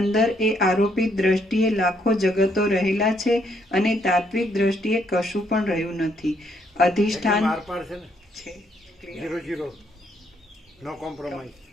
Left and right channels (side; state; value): both; normal; correlation 0.71